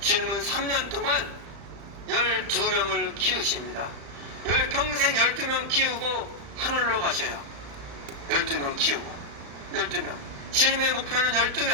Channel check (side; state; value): left; late; 35 ms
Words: 주님은 3년 동안 12명을 키우십니다. 평생 12명 키우고 하늘로 가셔요. 12명 키우고 12명. 주님의 목표는